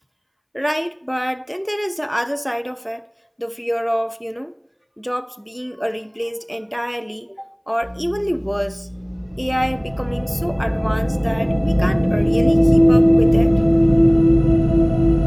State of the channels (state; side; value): identical; both; correlation 1.00